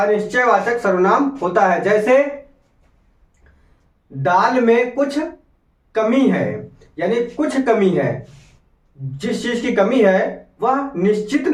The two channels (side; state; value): both; identical; correlation 1.00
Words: सर्वनाम होता है। जैसे दाल में कुछ कमी है, यानी कुछ कमी है, जिस चीज की कमी है वह निश्चित